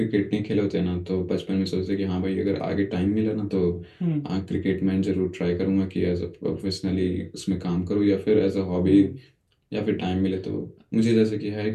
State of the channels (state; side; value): identical; both; correlation 1.00